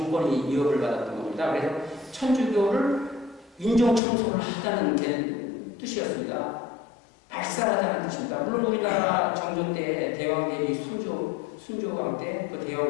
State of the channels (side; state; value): right; drops out; at 4.0 s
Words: 위협을 받았던 겁니다. 그래서 천주교를 인종 청소를 하자는 뜻이었습니다. 발살하자는 뜻입니다. 물론 우리나라 정조 때 대왕 대비 순조왕 때 그